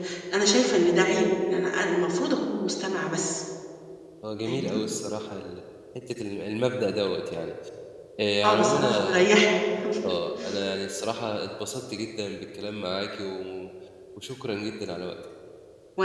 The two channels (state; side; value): identical; both; correlation 1.00